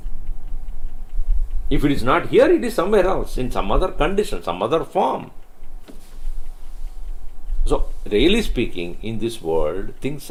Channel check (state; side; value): identical; both; correlation 1.00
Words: If it is not here, it is somewhere else, in some other condition, some other form. So, really speaking, in this world, things